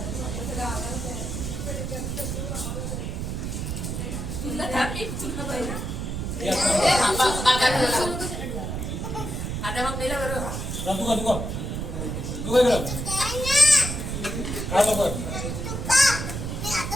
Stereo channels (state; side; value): noise; right; rumble, 4 dB below the sound